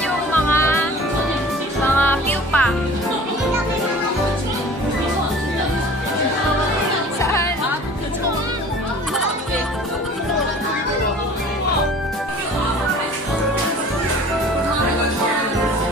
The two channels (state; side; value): normal; both; correlation 0.45